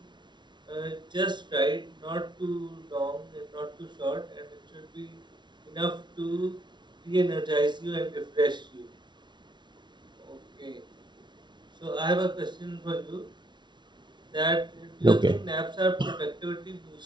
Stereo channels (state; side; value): late; left; 0.22 ms